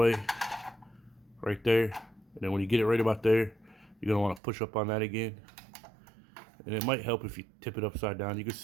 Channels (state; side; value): drops out; left; at 4.4 s